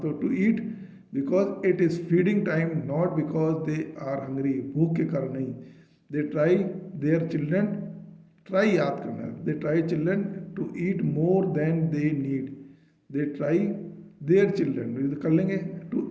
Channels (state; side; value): identical; both; correlation 1.00